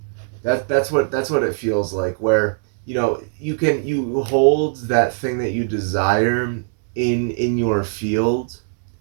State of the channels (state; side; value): silent; left; digital silence